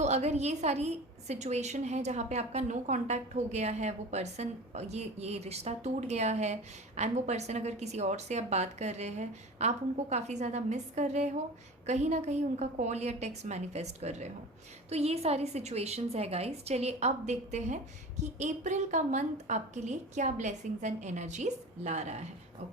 अगर ये सारी सिचुएशन है जहाँ पे आपका नो कांटेक्ट हो गया है, वो पर्सन, ये रिश्ता टूट गया है एंड वो पर्सन अगर किसी और से आप बात कर रहे हैं, आप उनको काफ़ी ज़्यादा मिस कर रहे हो, कहीं ना कहीं उनका कॉल या टेक्स्ट मैनिफेस्ट कर रहे हो, तो ये सारी सिचुएशंस है गाइस। चलिए अब देखते हैं कि अप्रैल का मंथ आपके लिए क्या ब्लेसिंग्स एंड एनर्जीज ला रहा है।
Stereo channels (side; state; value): both; normal; correlation 0.35